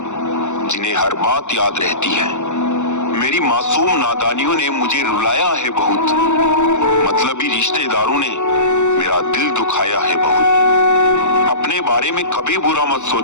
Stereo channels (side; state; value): right; late; 0.84 ms